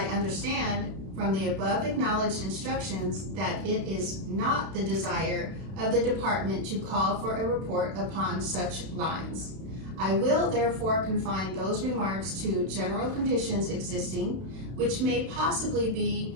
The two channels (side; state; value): left; late; 31 ms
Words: understand from the above acknowledged instructions, that it is not the desire of the department to call for a report upon such lines. I will therefore confine those remarks to general conditions existing, which may possibly